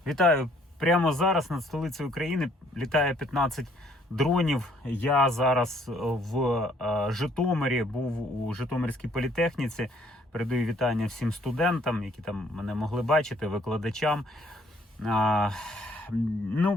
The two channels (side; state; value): both; normal; correlation 0.63